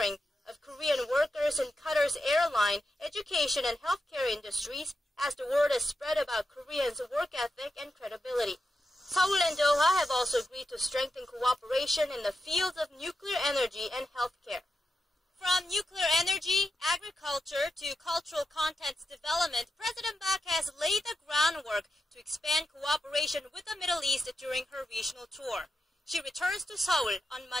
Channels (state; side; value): normal; both; correlation 0.88